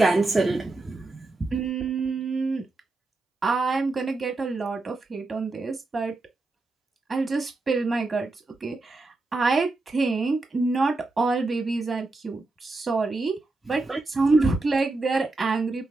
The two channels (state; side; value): quieter; left; 3.3 dB